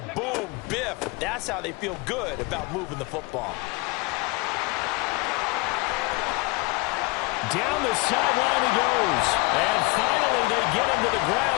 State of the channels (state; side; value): quieter; right; 25.7 dB